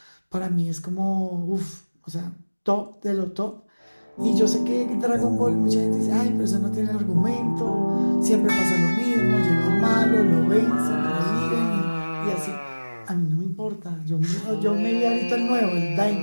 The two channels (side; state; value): both; inverted; correlation -1.00